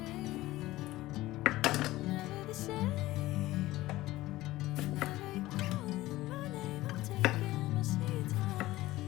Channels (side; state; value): right; quieter; 17.2 dB